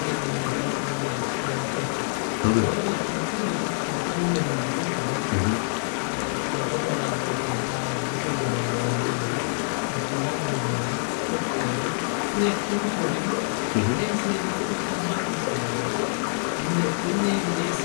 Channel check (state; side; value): silent; right; digital silence